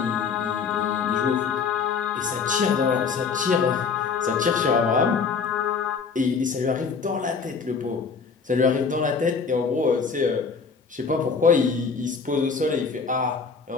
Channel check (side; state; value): right; quieter; 5.4 dB